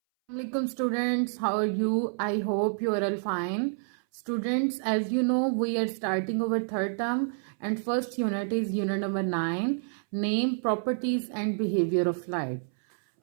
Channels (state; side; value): silent; left; 59 dB below the other